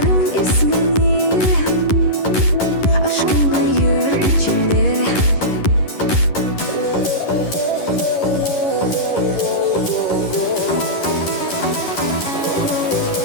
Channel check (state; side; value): late; right; 11 ms